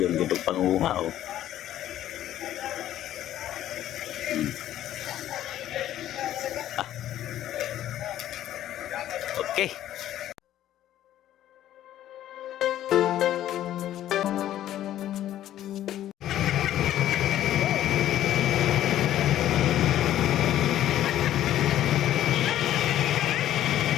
gitu panguha oh. Ah. Oke.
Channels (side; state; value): right; quieter; 12.5 dB